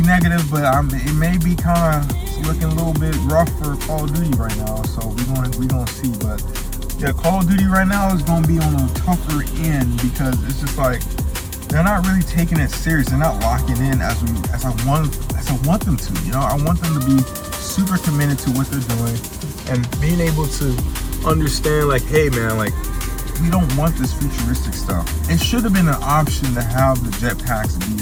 negative, but it may be kind of looking a little bit rough for Call of Duty right now. So we gonna see. But yeah, Call of Duty right now is gonna be on a tougher end because it's just like they're not really taking it serious. They're not locking in as I want them to. You know, I want them to be super committed to what they're doing and being able to understand like, hey man, like we don't want this futuristic stuff. It should have been an option to have the jetpacks be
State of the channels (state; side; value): identical; both; correlation 1.00